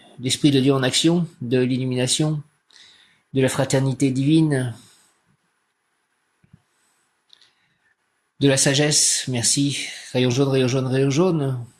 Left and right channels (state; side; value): identical; both; correlation 1.00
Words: l'Esprit de Dieu en action, de l'illumination, de la fraternité divine, de la sagesse. Merci. Rayon jaune, rayon jaune, rayon jaune,